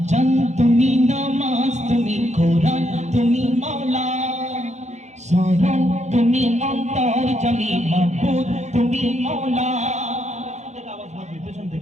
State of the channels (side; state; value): left; late; 0.33 ms